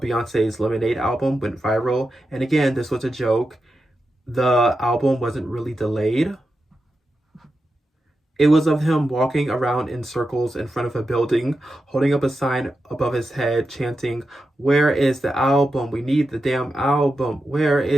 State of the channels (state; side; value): normal; both; correlation 0.89